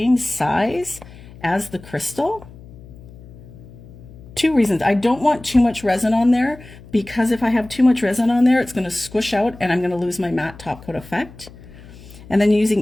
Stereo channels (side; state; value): left; noise; hum, 19 dB below the sound